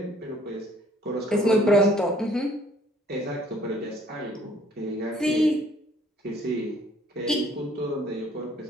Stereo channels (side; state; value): both; normal; correlation 0.59